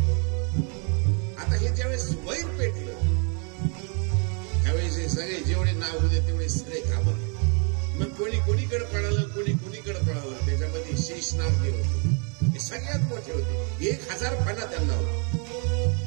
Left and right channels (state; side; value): quieter; left; 37.2 dB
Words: आता हे ज्यावेळेस वैर पेटलं त्यावेळेस हे सगळे जेवढे नाव होते तेवढे सगळे घाबरले. मग कोणी कोणीकडे पळालं, कोणी कोणीकडे पळालं. त्याच्यामध्ये शेषनाग जे होते ते सगळ्यात मोठे होते. 1000 फणा त्यांना होता.